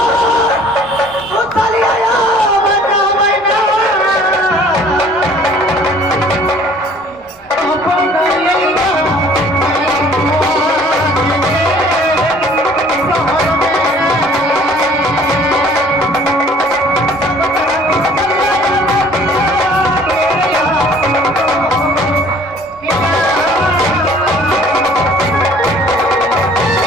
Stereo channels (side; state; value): both; normal; correlation 0.54